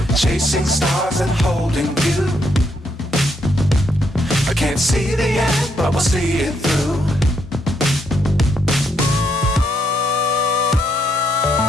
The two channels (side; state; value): both; normal; correlation 0.75